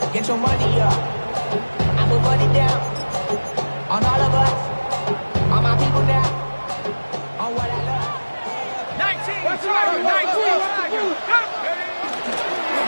Get your money up. I put money down. On all of us. On my people now. On what I love. 19.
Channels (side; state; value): both; inverted; correlation -1.00